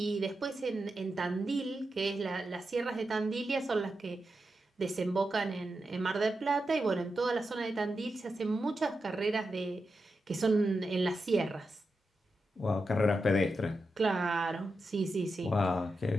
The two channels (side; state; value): both; normal; correlation 0.88